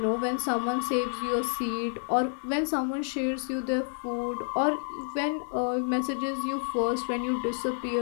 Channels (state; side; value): silent; right; 58 dB below the other